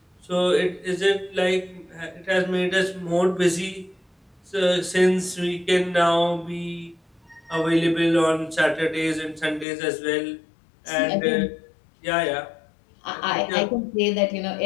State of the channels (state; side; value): drops out; right; at 9.7 s